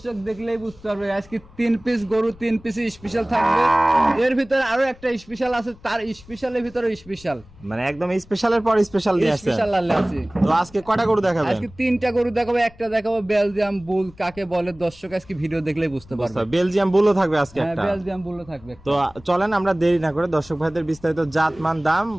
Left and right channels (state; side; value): noise; left; rumble, 23 dB below the sound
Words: দেখলেই বুঝতে পারবে। আজকে 3 পিস গরু 3 পিস স্পেশাল থাকবে। এর ভিতরে আরো একটা স্পেশাল আছে, তার স্পেশালের ভিতরে স্পেশাল, মানে একদম স্পেশালের পর স্পেশাল নিয়ে আসছেন। স্পেশাল আছে। তো আজকে কয়টা গরু দেখাবেন? আজকে 3টা গরু দেখাবো। একটা দেখাবো বেলজিয়াম বুল কাকে বলে, দর্শক আজকে ভিডিও দেখলেই বুঝতে পারবে। বেলজিয়াম বুলও থাকবে আজকে হ্যাঁ, একটা। বেলজিয়াম বুলও থাকবে। তো চলেন আমরা দেরি না করে দর্শক ভাইদের বিস্তারিত জাত মান দাম